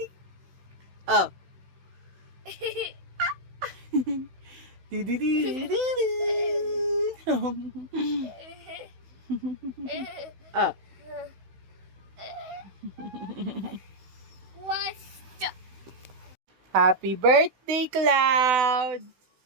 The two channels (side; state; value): left; late; 16 ms